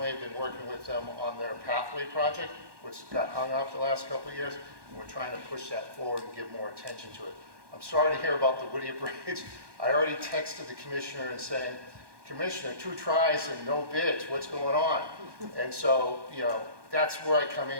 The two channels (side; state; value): left; late; 1.2 ms